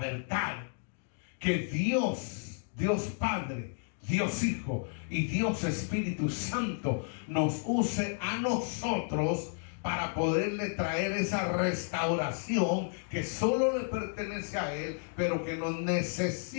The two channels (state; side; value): silent; right; 56 dB below the other